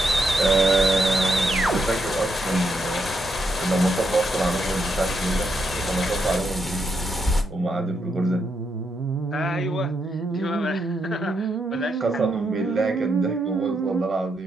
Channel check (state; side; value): normal; both; correlation 0.80